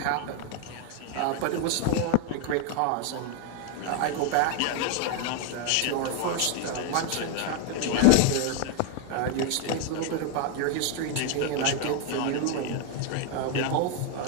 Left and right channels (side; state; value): both; different; correlation 0.00